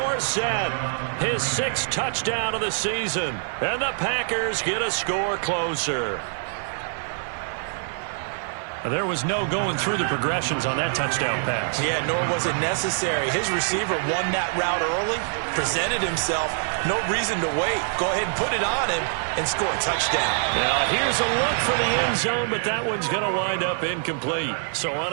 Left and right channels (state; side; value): silent; left; digital silence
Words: his 6th touchdown of the season. And the Packers get a score closer. There was no going through the progressions on that touchdown pass. Yeah, nor was it necessary. His receiver won that route early, presented himself. No reason to wait. Go ahead and put it on him and score a touchdown. Now, here's a look for the end zone, but that one's going to wind up incomplete. So